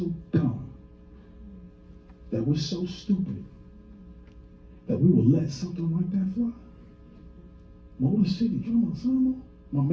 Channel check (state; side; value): identical; both; correlation 1.00